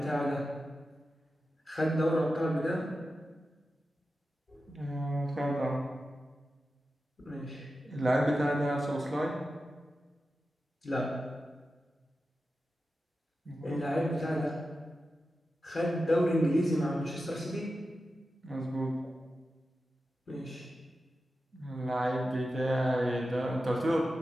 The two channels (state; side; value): normal; both; correlation 0.92